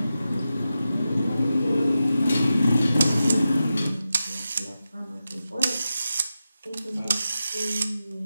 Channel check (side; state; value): both; inverted; correlation -0.91